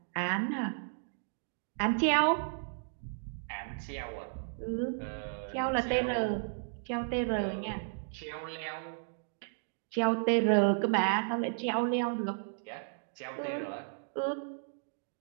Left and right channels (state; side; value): silent; left; digital silence